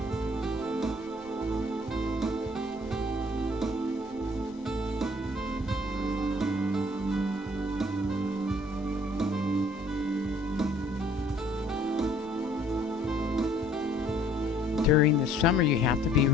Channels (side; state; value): both; normal; correlation 0.58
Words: During the summer, you have to be